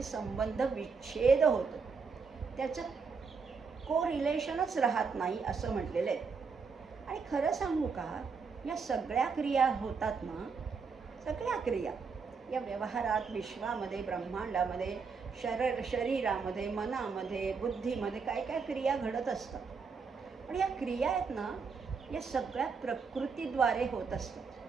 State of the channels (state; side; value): quieter; left; 5.2 dB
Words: संबंध विच्छेद होतो, त्याचं को रिलेशनच राहत नाही असं म्हटलेलं आहे. आणि खरं सांगू का, या सगळ्या क्रिया होतात ना, सगळ्या क्रिया या व्यवहारात, विश्वामध्ये, ब्रह्मांडामध्ये, शरीरामध्ये, मनामध्ये, बुद्धीमध्ये काय काय क्रिया घडत असतात. पण या क्रिया आहेत ना, या सगळ्या प्रकृतीद्वारे होत असतात.